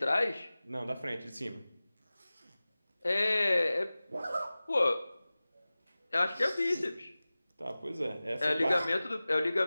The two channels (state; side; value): inverted; both; correlation -0.97